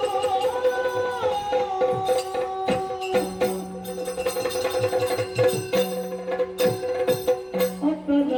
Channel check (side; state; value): both; identical; correlation 1.00